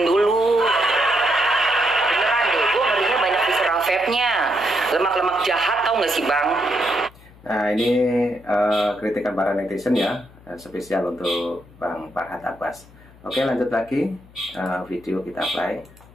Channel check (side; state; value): left; noise; hum, 24 dB below the sound